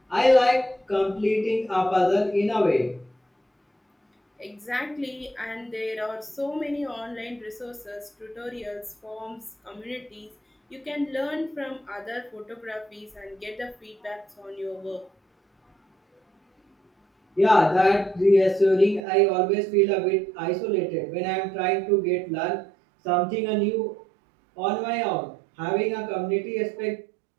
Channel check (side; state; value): left; drops out; at 19.0 s